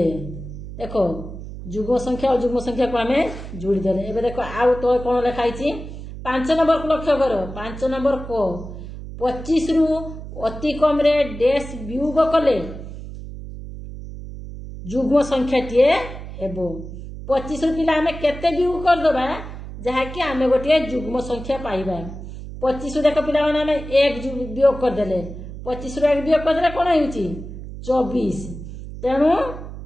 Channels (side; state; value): right; noise; hum, 11 dB below the sound